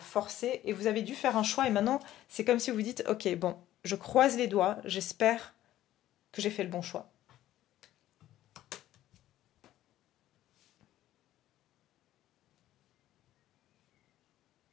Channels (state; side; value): quieter; right; 13.7 dB